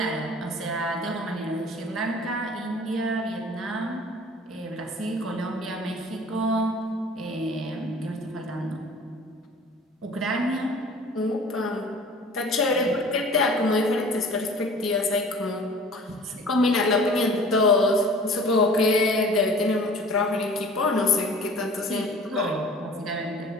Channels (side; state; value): both; normal; correlation 0.46